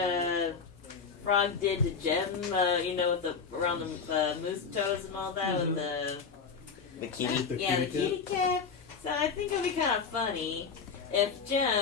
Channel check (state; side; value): quieter; right; 5.7 dB